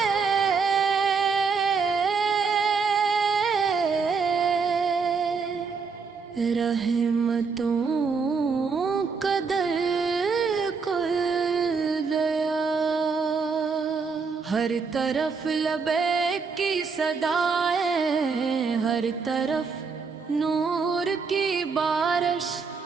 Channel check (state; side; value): quieter; left; 5.2 dB